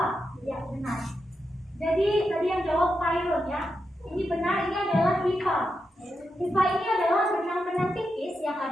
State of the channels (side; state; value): both; normal; correlation 0.86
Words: Ya, benar. Jadi tadi yang jawab Khairun ya. Ini benar, ini adalah hifa. Hifa ini adalah benang-benang tipis yang